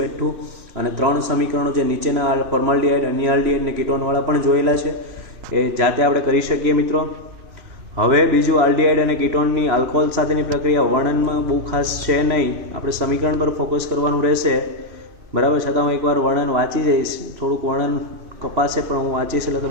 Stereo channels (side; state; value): left; late; 2.9 ms